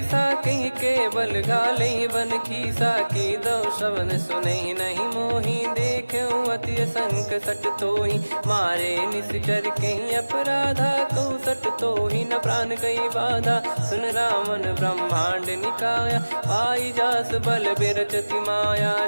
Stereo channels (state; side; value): inverted; both; correlation -1.00